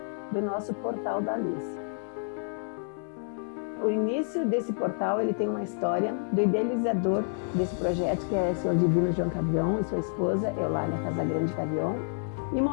do nosso Portal da Luz. O início desse portal, ele tem uma história do idealizador desse projeto, que é o Senhor Divino João Cavion e sua esposa, Eulália Casagrande Cavion, e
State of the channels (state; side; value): silent; right; digital silence